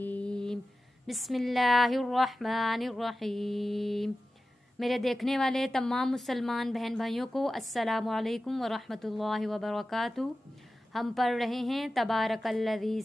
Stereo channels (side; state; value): both; normal; correlation 0.94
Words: بسم اللہ الرحمن الرحیم۔ میرے دیکھنے والے تمام مسلمان بہن بھائیوں کو السلام علیکم ورحمۃ اللہ وبرکاتہ۔ ہم پڑھ رہے ہیں تبارک الذی